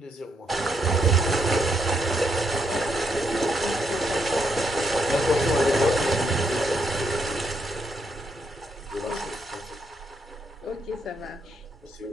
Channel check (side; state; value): both; normal; correlation 0.78